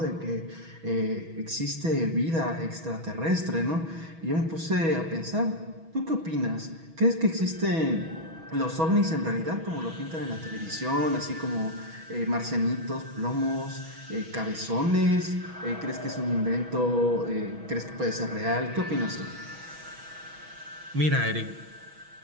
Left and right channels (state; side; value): late; left; 6.2 ms